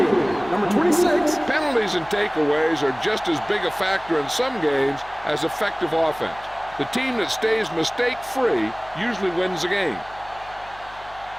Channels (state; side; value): noise; left; hum, 23 dB below the sound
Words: number 26. Penalties and takeaways are just as big a factor in some games as effective offense. The team that stays mistake-free usually wins the game.